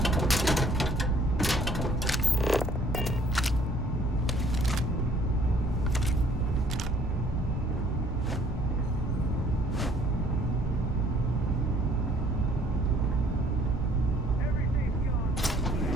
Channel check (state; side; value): normal; both; correlation 0.60